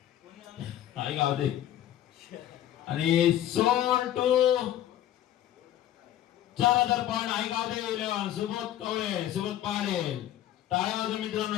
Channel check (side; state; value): right; quieter; 12.2 dB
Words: आई गावदेव आणि सोल टू 4000 पॉईंट आई गावदेव 11 सुबोध कवळे सुबोध पाटील. टाळ्या वाजवा